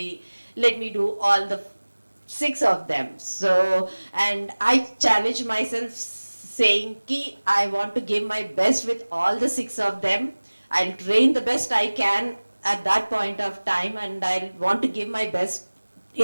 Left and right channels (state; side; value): inverted; both; correlation -1.00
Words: let me do all the 6 of them. So, and I challenged myself saying, ki, I want to give my best with all the 6 of them. I'll train the best I can at that point of time, and I want to give my best